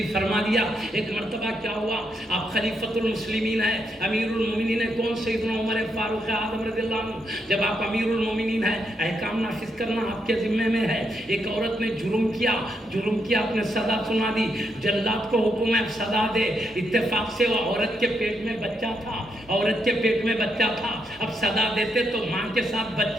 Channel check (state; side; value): normal; both; correlation 0.79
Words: فرما دیا ایک مرتبہ کیا ہوا، آپ خلیفۃ المسلمین ہیں، امیر المومنین ہیں، کون؟ سیدنا عمر فاروق اعظم رضی اللہ عنہ۔ جب آپ امیر المومنین ہیں، احکام نافذ کرنا آپ کے ذمے میں ہے۔ ایک عورت نے جرم کیا، آپ نے سزا سنا دی، جلاد کو حکم ہے سزا دے۔ اتفاق سے وہ عورت کے پیٹ میں بچہ تھا، اب سزا دیتے تو ماں کے ساتھ